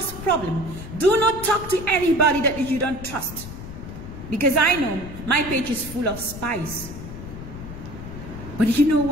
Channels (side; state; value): left; noise; rumble, 11 dB below the sound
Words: problem. Do not talk to anybody that you don't trust. Because I know my page is full of spies. But you know